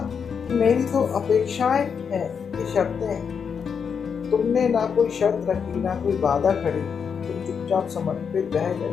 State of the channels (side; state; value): right; quieter; 6.6 dB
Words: कि मेरी तो अपेक्षाएं हैं, ये शर्तें हैं। तुमने ना कोई शर्त रखी, ना कोई बाधा खड़ी। तुम चुपचाप समर्पित रह